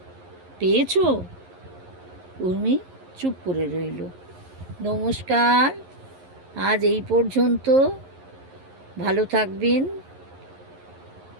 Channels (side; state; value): left; late; 11 ms